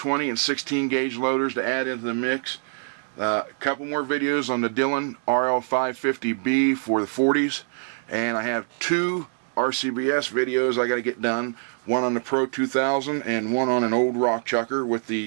and 16 gauge loaders to add into the mix. A couple more videos on the Dillon RL550B for the 40s. And I have 2 RCBS videos I got to get done. One on the Pro 2000 and one on an old rock chucker with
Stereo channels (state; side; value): silent; left; 62 dB below the other